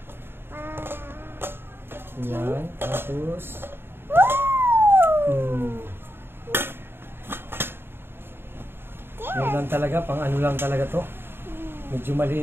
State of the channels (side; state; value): left; late; 0.11 ms